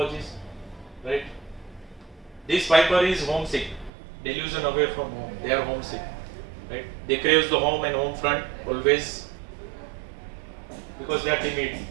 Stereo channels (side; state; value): left; drops out; at 3.9 s